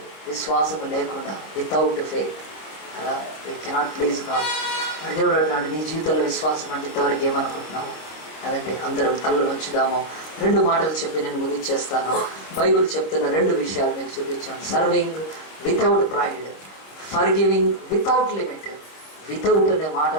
విశ్వాసము లేకుండా without faith we cannot please God. దేవుడు అంటున్నాడు, నీ జీవితంలో విశ్వాసం అంటే ఇంతవరకు ఏమనుకుంటున్నావు కదండి. అందరం తల్లు వచ్చుదాము. 2 మాటలు చెప్పి నేను ముగించేస్తాను. బైబిల్ చెప్తున్న 2 విషయాలు మీకు చూపించాను. Serving without pride, forgiving without limit. Without అనే మాట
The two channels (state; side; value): late; right; 26 ms